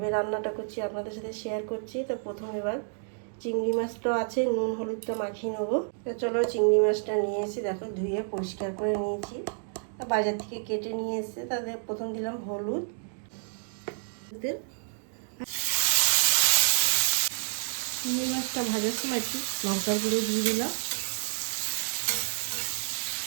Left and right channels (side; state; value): left; silent; digital silence